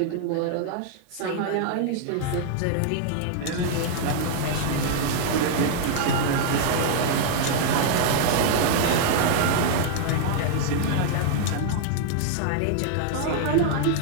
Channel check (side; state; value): both; different; correlation -0.01